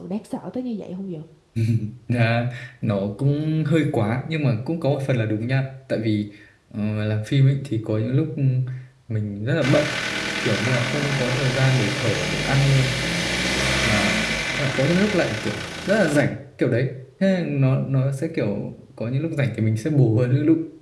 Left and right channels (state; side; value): identical; both; correlation 1.00